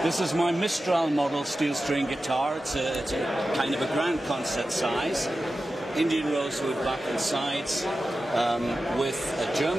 This is my Mistral model steel string guitar. It's a kind of a grand concert size. Indian rosewood back and sides, with a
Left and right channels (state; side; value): normal; both; correlation 0.93